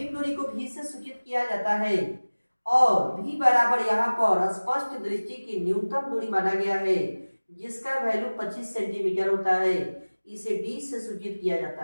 दूरी को v से सूचित किया जाता है और v बराबर यहाँ पर स्पष्ट दृष्टि की न्यूनतम दूरी माना गया है जिसका वैल्यू 25 सेंटीमीटर होता है। इसे d से सूचित किया जाता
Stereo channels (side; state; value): both; inverted; correlation -1.00